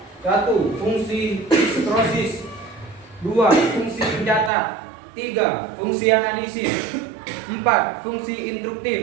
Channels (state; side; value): drops out; left; at 4.5 s